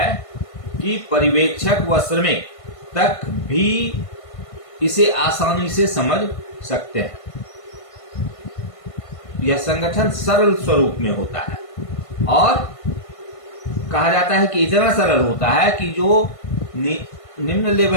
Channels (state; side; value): late; right; 1.5 ms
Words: कि पर्यवेक्षक व श्रमिक तक भी इसे आसानी से समझ सकते हैं। यह संगठन सरल स्वरूप में होता है और कहा जाता है कि इतना सरल होता है कि जो निम्न